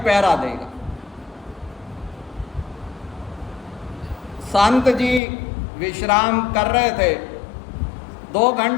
देगा। संत जी विश्राम कर रहे थे, 2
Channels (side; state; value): right; drops out; at 5.2 s